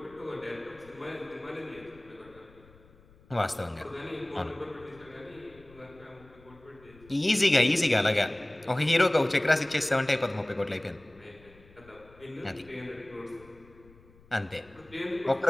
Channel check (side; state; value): left; noise; rumble, 25 dB below the sound